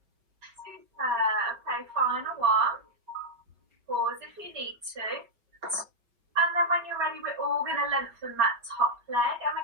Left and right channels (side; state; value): left; late; 5.2 ms